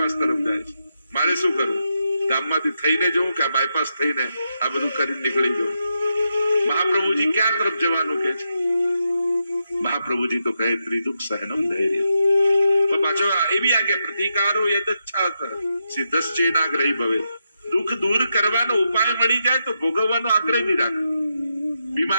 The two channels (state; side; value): inverted; both; correlation -0.85